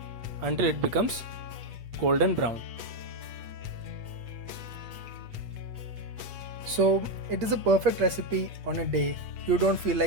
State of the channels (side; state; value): left; late; 8.3 ms